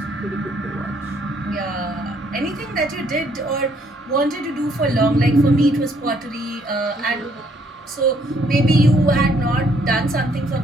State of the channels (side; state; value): both; normal; correlation 0.67